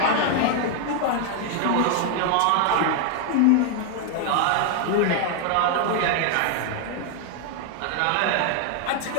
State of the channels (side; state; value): both; different; correlation 0.01